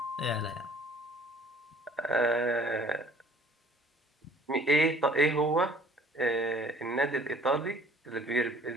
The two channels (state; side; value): normal; both; correlation 0.54